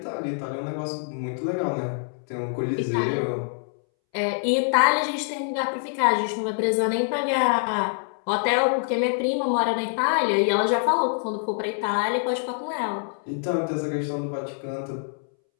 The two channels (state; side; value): silent; right; 62 dB below the other